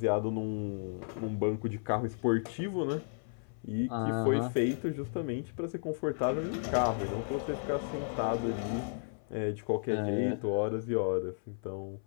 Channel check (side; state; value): right; silent; 55 dB below the other